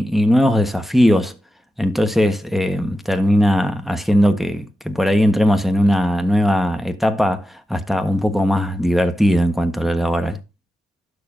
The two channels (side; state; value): both; normal; correlation 0.91